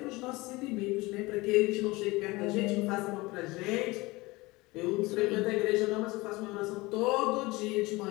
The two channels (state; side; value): quieter; right; 22.1 dB